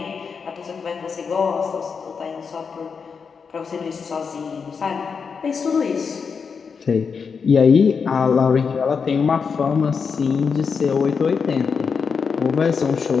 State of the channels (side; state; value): right; quieter; 5.8 dB